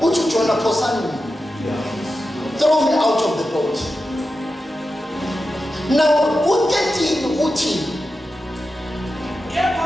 Uthi uJona phosani. Throw me out of the boat. Now u13 uthi Kepha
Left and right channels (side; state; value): both; normal; correlation 0.91